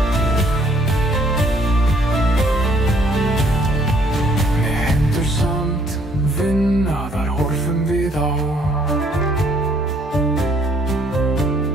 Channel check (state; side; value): normal; both; correlation 0.64